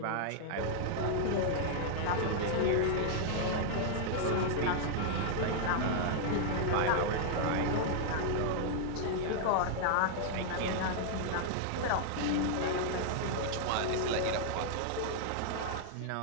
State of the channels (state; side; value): different; both; correlation -0.01